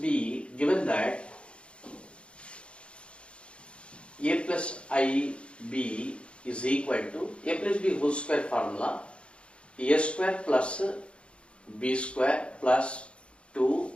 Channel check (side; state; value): right; late; 0.058 ms